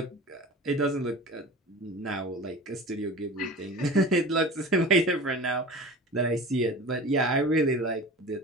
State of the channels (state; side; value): normal; both; correlation 0.36